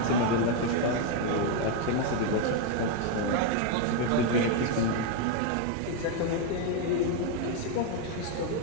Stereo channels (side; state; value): both; different; correlation 0.01